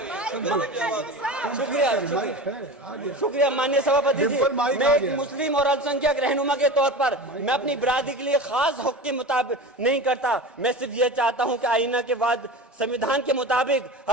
शुक्रिया माननीय सभापति जी। मैं एक मुस्लिम और अल्पसंख्यक रहनुमा के तौर पर मैं अपनी बिरादरी के लिए खास हक के मुताबिक नहीं करता। मैं सिर्फ ये चाहता हूं कि आईना के बाद संविधान के मुताबिक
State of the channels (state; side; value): normal; both; correlation 0.31